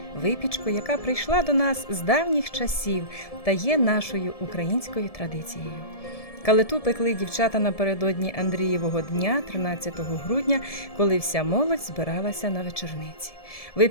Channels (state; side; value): late; right; 1.7 ms